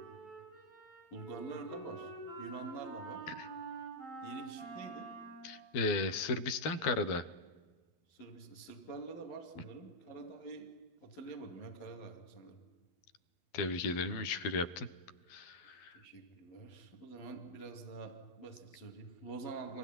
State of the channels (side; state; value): right; late; 12 ms